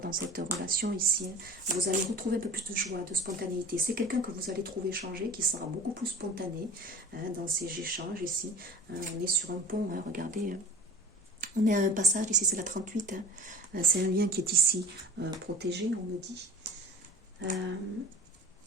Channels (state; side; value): normal; both; correlation 0.40